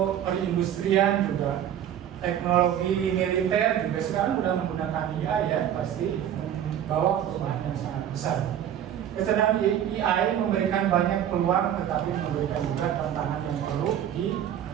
perindustrian juga, teknologi militer juga sekarang sudah menggunakan AI ya, pasti membawa perubahan yang sangat besar. Kecerdasan AI memberikan banyak peluang, tetapi memberikan juga tantangan yang perlu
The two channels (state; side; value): quieter; left; 10.2 dB